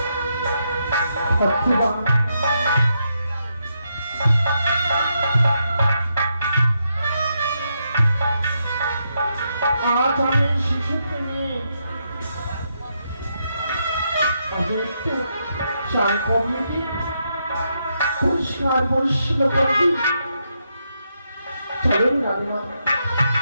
আজ আমি শিশুকে নিয়ে একটু চাল কমিয়ে দিই, পরিষ্কার পরিচ্ছন্ন করে দিই। চলুন রানীমা।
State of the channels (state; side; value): inverted; both; correlation -0.80